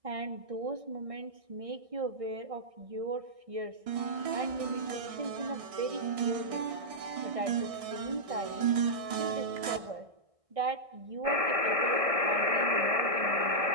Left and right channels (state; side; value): late; left; 1.6 ms